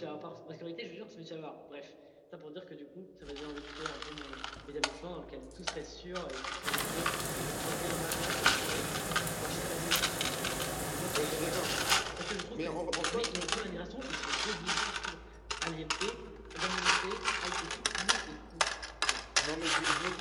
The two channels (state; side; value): identical; both; correlation 1.00